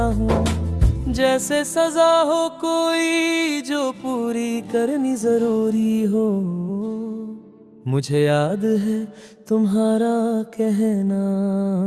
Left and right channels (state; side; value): identical; both; correlation 1.00